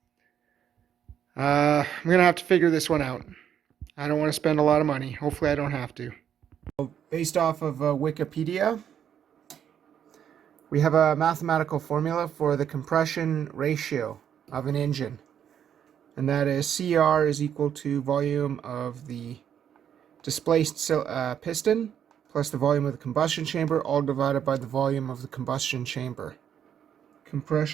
I'm going to have to figure this one out. I don't want to spend a lot of money. Hopefully I don't have to. Based off of Wikipedia, we have a mathematical formula for the compression ratio of an engine. And that is CR is equal to volume of the displaced piston plus the volume of the combustion chamber, all divided by the volume of the combustion chamber.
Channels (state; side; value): quieter; left; 9.0 dB